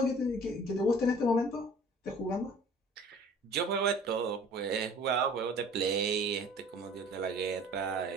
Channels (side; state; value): both; normal; correlation 0.48